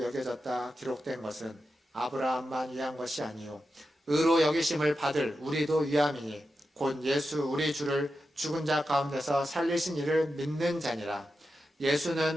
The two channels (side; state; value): both; normal; correlation 0.89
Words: 여겨졌다 기록된 것은 아브라함만 위한 것이 아니요 의로 여기심을 받을 우리도 위함이니 곧 예수 우리 주를 죽은 자 가운데서 살리신 이를 믿는 자니라.